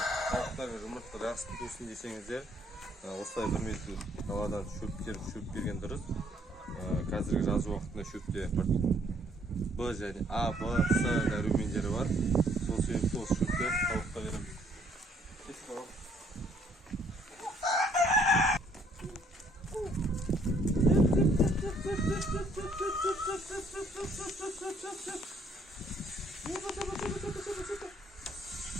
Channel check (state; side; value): normal; both; correlation 0.65